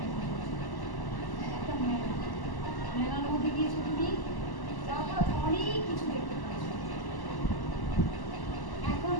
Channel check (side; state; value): right; late; 1.1 ms